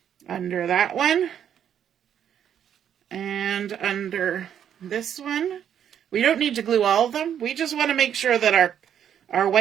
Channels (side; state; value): left; quieter; 9.3 dB